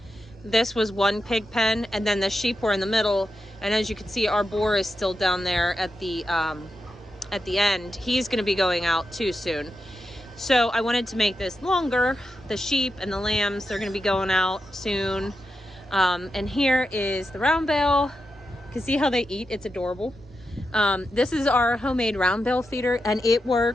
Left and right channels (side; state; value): both; normal; correlation 0.88